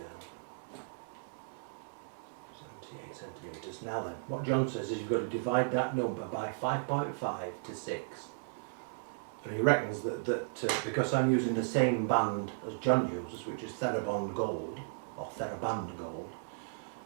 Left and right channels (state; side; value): silent; left; 54 dB below the other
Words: 78 centimetres. Now then, what John says is you've got to divide that number by 5.5 to 6. And he reckons that because I'm using the same band as John uses, which is Thera Band Gold, or Thera Band Gold,